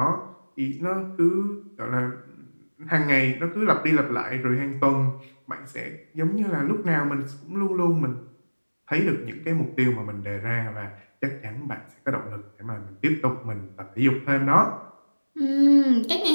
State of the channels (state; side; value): inverted; both; correlation -1.00